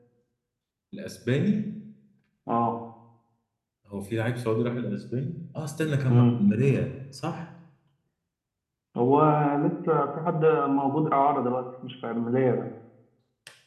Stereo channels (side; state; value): both; identical; correlation 1.00